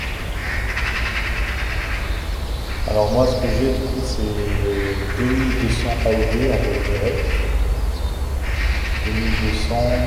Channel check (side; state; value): both; identical; correlation 1.00